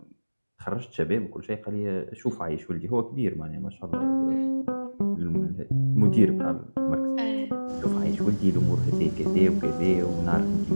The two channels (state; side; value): inverted; both; correlation -1.00